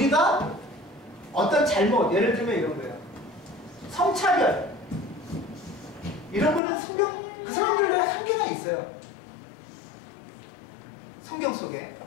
어떤 잘못, 예를 들면 이런 거예요. 성차별 이런 거는 성경, 그 사람들의 한계가 있어요. 성경 속에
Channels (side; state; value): right; drops out; at 6.6 s